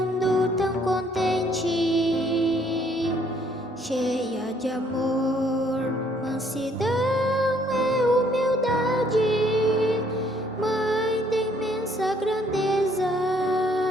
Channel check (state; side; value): normal; both; correlation 0.65